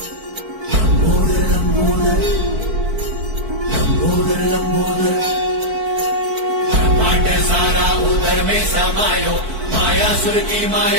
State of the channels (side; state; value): left; late; 4.5 ms